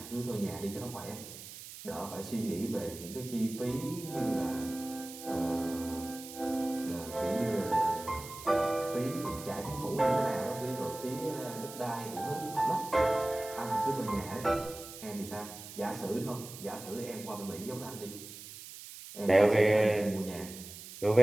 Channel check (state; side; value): noise; right; hiss, 13 dB below the sound